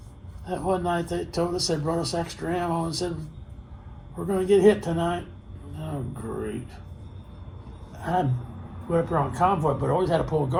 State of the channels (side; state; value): both; identical; correlation 1.00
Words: one night they told us, they brought us extra ammo and said, we're going to get hit tonight. Oh, great. I went up there on convoy, but I always had to pull